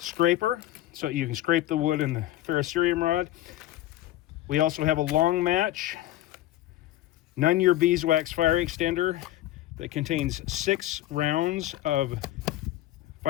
so you can scrape the wood in the ferrocerium rod. We also have a long match, Nunn-Ure beeswax fire extender that contains 6 rounds of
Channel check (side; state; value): right; quieter; 14.6 dB